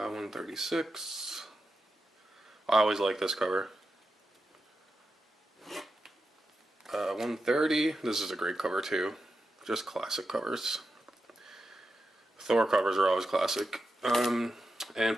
I always like this cover. 130. This is a great cover too. Just classic covers. Thor covers are always classic. And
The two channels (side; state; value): both; normal; correlation 0.89